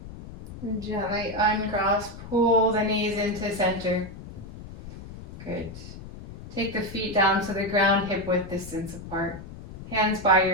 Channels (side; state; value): left; noise; rumble, 13 dB below the sound